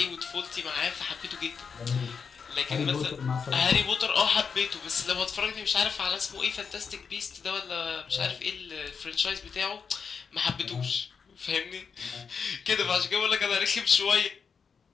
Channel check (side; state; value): right; quieter; 6.0 dB